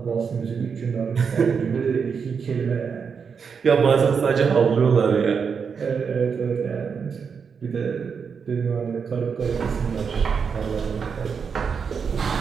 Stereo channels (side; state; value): left; quieter; 6.1 dB